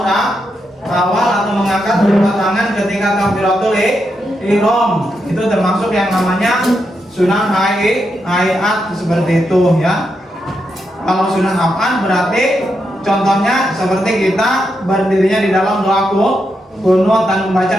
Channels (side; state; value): both; normal; correlation 0.83